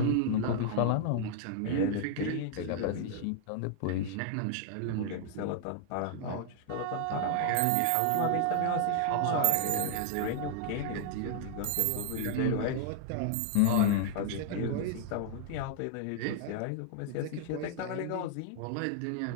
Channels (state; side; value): different; both; correlation -0.01